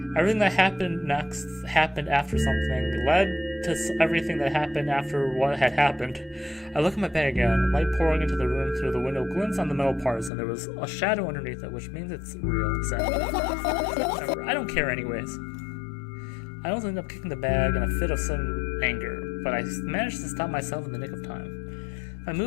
Everything that happened next happened after something, led to everything that happened after what had happened. I look at my bag again, light pouring into the room through the window glints on the metal parts, and there was a shadow underneath it, which means it's real. Sad. Whatever, I don't care anyways. I almost ended up kicking the bag in a fit of sudden anger, but I managed to stop myself in the nick of time. If I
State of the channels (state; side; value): drops out; right; at 10.3 s